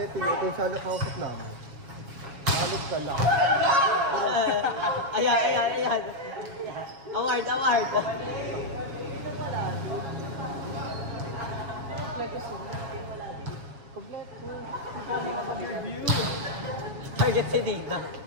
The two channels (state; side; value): late; left; 7.2 ms